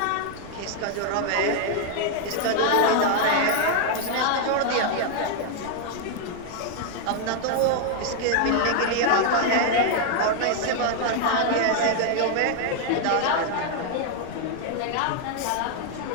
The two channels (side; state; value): both; different; correlation 0.00